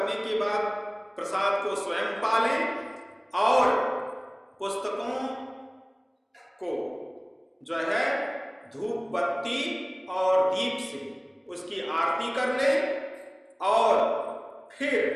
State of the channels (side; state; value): both; identical; correlation 1.00